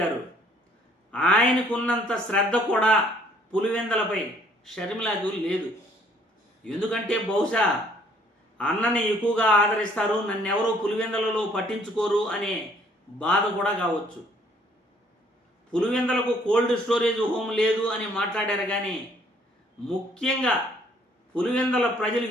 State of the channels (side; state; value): both; normal; correlation 0.61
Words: ఆయనకున్నంత శ్రద్ధ కూడా పులివెందలపై షర్మిలకు లేదు. ఎందుకంటే బహుశా అన్నని ఎక్కువగా ఆదరిస్తారు, నన్నెవరూ పులివెందలలో పట్టించుకోరు అనే బాధ కూడా కావచ్చు. పులివెందలకు కోల్డ్ స్టోరేజ్ హోమ్ లేదు అని మాట్లాడారు, కానీ ముఖ్యంగా పులివెందల ప్రజలు